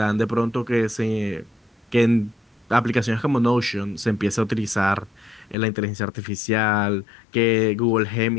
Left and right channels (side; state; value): right; drops out; at 5.6 s